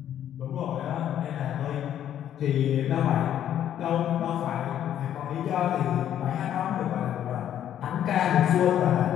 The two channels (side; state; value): right; quieter; 10.6 dB